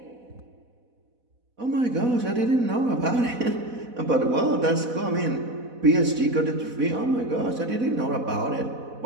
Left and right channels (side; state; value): left; late; 4.1 ms